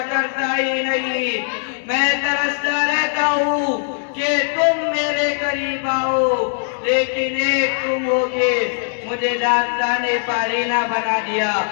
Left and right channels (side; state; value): right; silent; 60 dB below the other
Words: کرتا ہی نہیں. میں ترستا رہتا ہوں کہ تم میرے قریب آؤ، لیکن ایک تم ہو کے مجھے داستان پارینا بنا دیا،